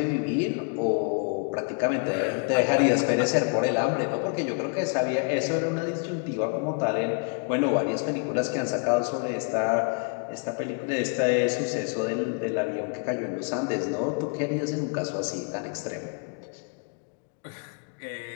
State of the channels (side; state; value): right; quieter; 39.8 dB